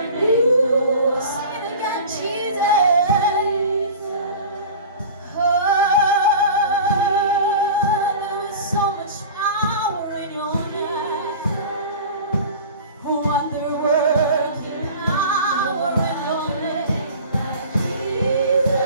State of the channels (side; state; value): both; inverted; correlation -0.38